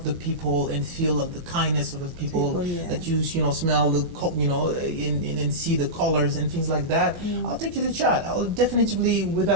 the people and feel the kindness of the people that you smell and see the colors and things like that. I'll take you to Chad. I'll definitely,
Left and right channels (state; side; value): late; left; 23 ms